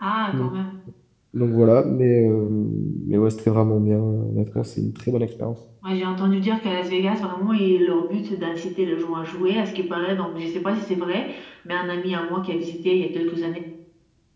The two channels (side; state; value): both; identical; correlation 1.00